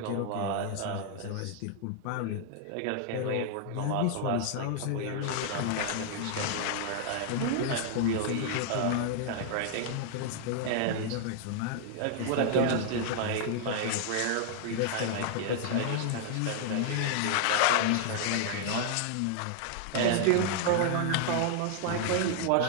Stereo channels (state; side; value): different; both; correlation -0.01